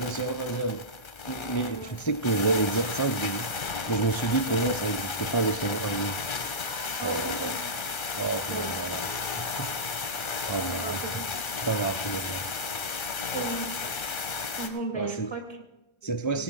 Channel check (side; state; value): right; late; 1.3 ms